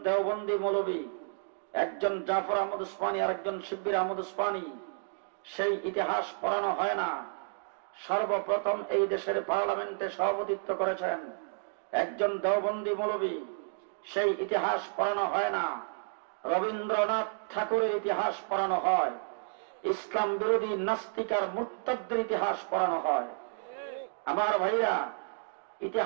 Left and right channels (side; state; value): left; silent; digital silence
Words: দেওবন্দি মৌলবী, একজন জাফর আহমদ উসমানী আর একজন শিব্বির আহমদ উসমানী, সেই ইতিহাস পড়ানো হয় না। সর্বপ্রথম এই দেশের পার্লামেন্টে সভাপতিত্ব করেছেন একজন দেওবন্দি মৌলবী, সেই ইতিহাস পড়ানো হয় না। রবীন্দ্রনাথ ঠাকুরের ইতিহাস পড়ানো হয়, ইসলাম বিরোধী নাস্তিক আর মুরতাদদের ইতিহাস পড়ানো হয়। আমার ভাইরা,